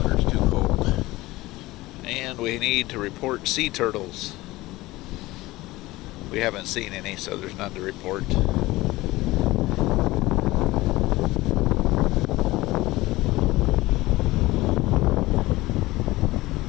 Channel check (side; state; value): right; quieter; 19.0 dB